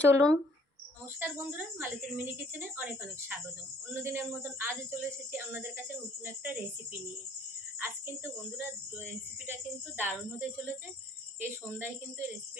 চলুন। নমস্কার বন্ধুরা, মালতীর মিনি কিচেনে অনেক অনেক স্বাগতম। অন্যদিনের মতন আজও চলে এসেছি আপনাদের কাছে নতুন একটা রেসিপি নিয়ে। আজ কিন্তু বন্ধুরা রেসিপিটা কিন্তু দারুণ হতে চলেছে। এই সন্ধ্যায় কিন্তু এই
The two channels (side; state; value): both; normal; correlation 0.60